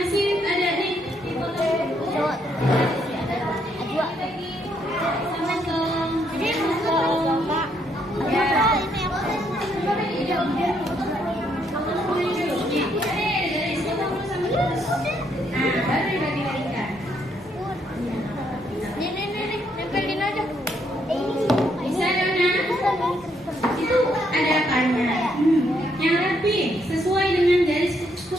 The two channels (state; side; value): normal; both; correlation 0.73